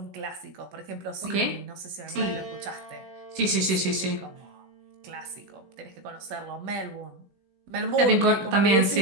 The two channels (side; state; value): left; late; 16 ms